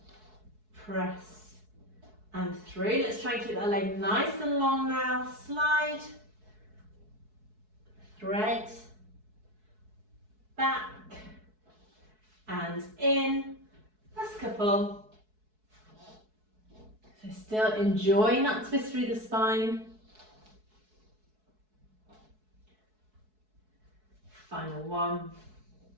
press and through. Let's try and keep that leg nice and long now. Slide, thread, back and in. Last couple. So still enjoying that twist through the spine. Final one.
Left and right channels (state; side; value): late; left; 4.6 ms